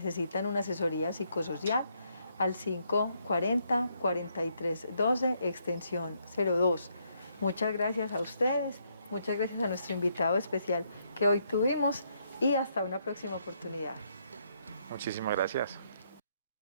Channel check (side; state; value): both; inverted; correlation -0.74